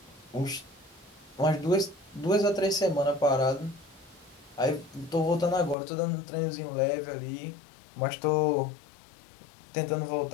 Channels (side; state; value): right; drops out; at 5.8 s